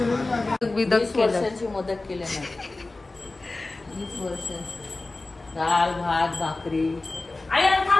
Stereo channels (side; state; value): right; quieter; 3.2 dB